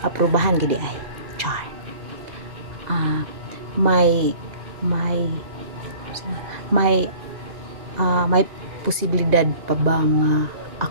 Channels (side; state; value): left; late; 2.0 ms